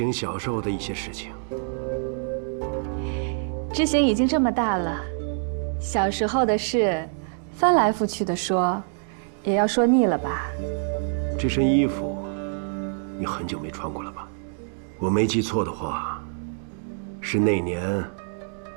小时候的一些事情。知行已经这么大了，小时候的事，翻来覆去的说，也要说腻了吧？这身衣服，你很久没穿过了吧？我没记错的话，是那年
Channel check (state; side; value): silent; left; 58 dB below the other